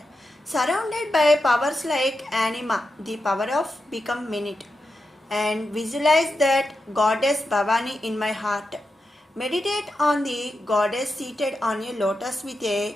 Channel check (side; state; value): both; normal; correlation 0.88